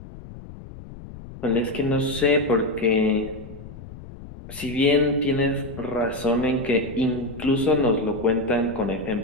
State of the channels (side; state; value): left; noise; rumble, 15 dB below the sound